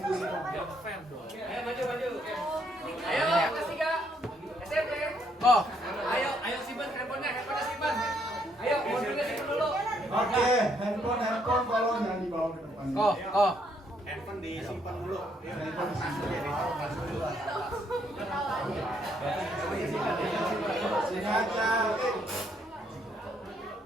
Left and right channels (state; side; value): normal; both; correlation 0.71